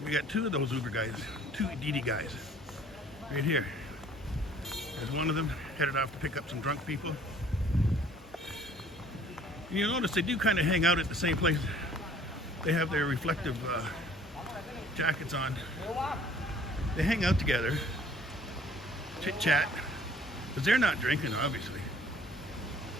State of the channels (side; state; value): both; normal; correlation 0.55